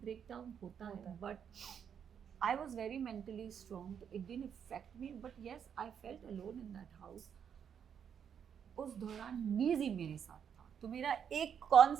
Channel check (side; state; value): left; quieter; 7.9 dB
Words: ब्रेकडाउन होता है. But I was very mentally strong, तो it didn't effect me. But yes I felt alone in that house. उस दौरान नेजी मेरे साथ था. तो मेरा एक